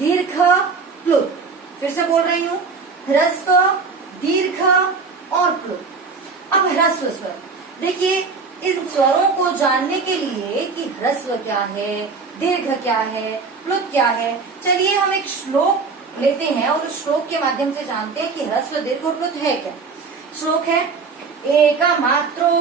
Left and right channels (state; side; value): quieter; left; 4.7 dB